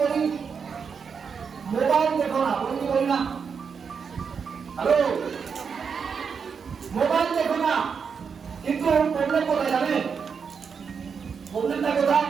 বলি? মোবাইল দেখো না, বলি কি বলি না? হ্যালো, মোবাইল দেখো না। কিন্তু প্রবলেম কোথায় জানেন? প্রবলেমটা কোথায়?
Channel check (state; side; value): quieter; left; 6.2 dB